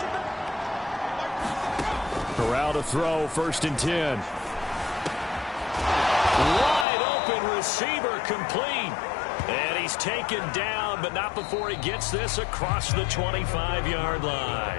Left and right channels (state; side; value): drops out; right; at 6.9 s